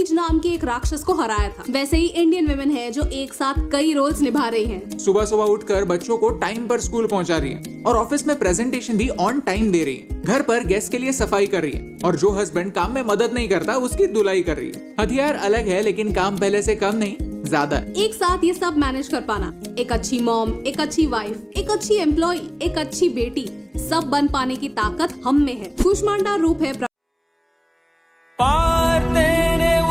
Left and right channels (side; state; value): both; identical; correlation 1.00